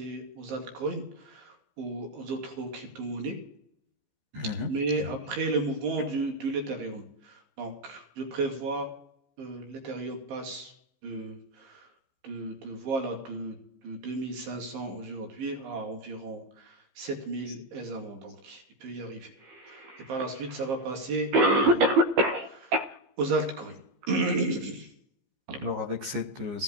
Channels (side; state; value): left; late; 15 ms